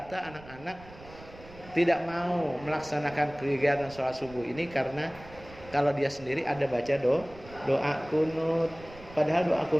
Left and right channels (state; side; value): noise; right; rumble, 19 dB below the sound